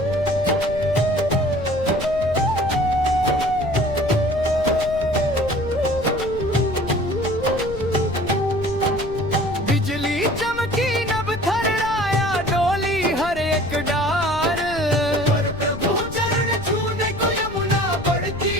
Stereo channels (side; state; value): left; noise; rumble, 11 dB below the sound